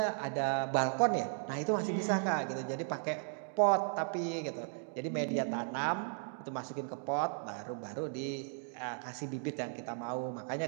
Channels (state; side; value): silent; left; 54 dB below the other